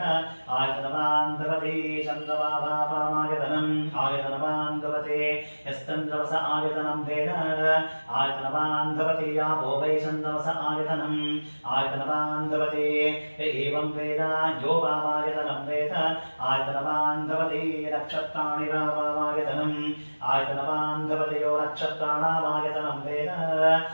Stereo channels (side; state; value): both; inverted; correlation -1.00